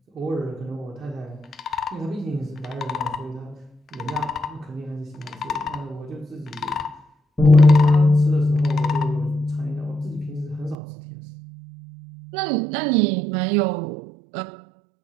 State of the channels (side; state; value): left; drops out; at 10.8 s